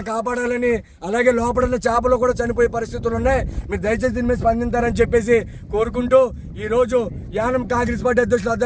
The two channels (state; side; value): identical; both; correlation 1.00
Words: కాపాడాలని, అలాగే లోపల ఉన్న చేపలు కూడా చనిపోయే పరిస్థితులు ఉన్నాయి. మీరు దయచేసి దీని మీద స్పందించారని చెప్పేసి కోరుకుంటూ ఈరోజు యానం కాంగ్రెస్ పార్టీ అధ్యక్షులు